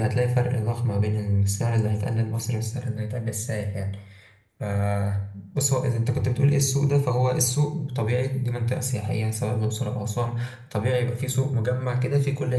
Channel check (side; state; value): both; identical; correlation 1.00